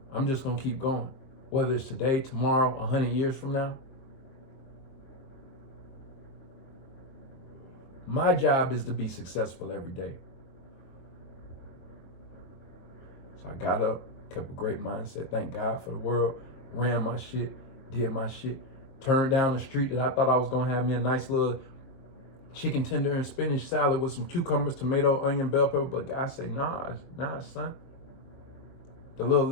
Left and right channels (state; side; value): late; right; 22 ms